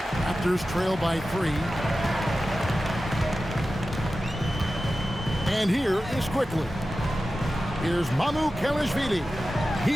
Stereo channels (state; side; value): normal; both; correlation 0.94